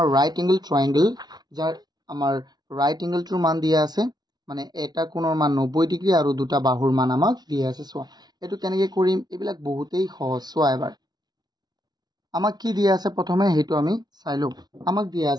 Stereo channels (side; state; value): left; late; 0.19 ms